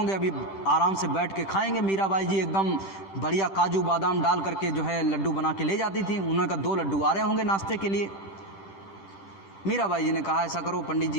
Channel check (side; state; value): right; late; 10 ms